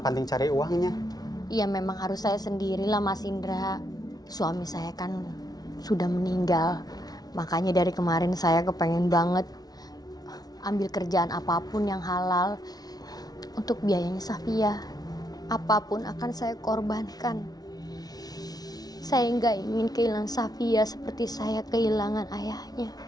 cari uangnya? Iya, memang harus saya sendirilah, Mas Indra. Suami saya kan sudah meninggal. Makanya dari kemarin saya kepengen banget ambil kerjaan apapun yang halal untuk biayanya Safia. Apapun akan saya korbankan. Saya nggak ingin kehilangan Safia seperti saya kehilangan ayahnya.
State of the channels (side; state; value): right; late; 0.19 ms